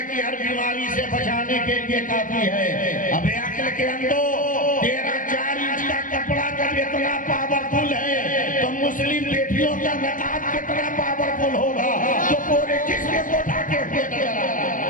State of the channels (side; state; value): right; late; 0.38 ms